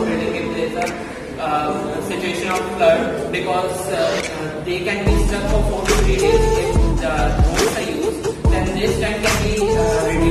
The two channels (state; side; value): identical; both; correlation 1.00